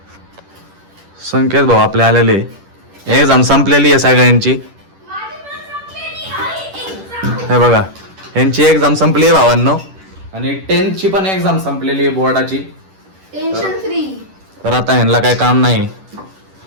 संकेत भाऊ आपले आलेले. एक्झाम संपलेली आहे सगळ्यांची. हे बघा यांची एक्झाम संपली आहे भावांनो. आणि 10th ची पण एक्झाम संपलेली आहे बोर्डाची. Tension free. तर आता ह्यांना काय काम नाही.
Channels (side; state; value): left; late; 10 ms